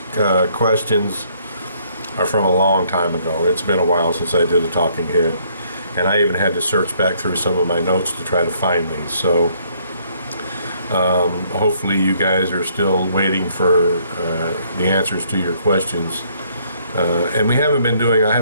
questions are from a long time ago. It's been a while since I did a talking head, and I even had to search back through some of my notes to try to find these. So hopefully you guys are still waiting for the answers to your questions. And I haven't been doing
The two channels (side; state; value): both; inverted; correlation -0.66